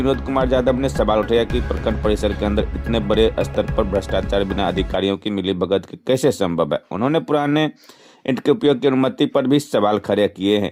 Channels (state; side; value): identical; both; correlation 1.00